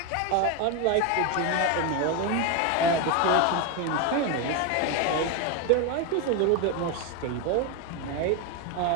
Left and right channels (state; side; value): different; both; correlation 0.02